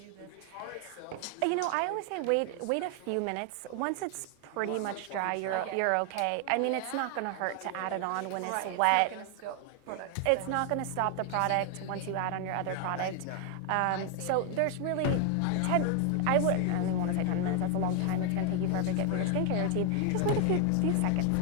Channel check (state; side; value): different; both; correlation 0.00